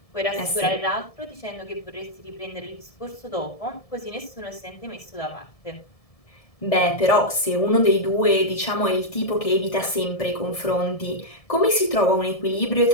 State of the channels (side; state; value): right; late; 1.7 ms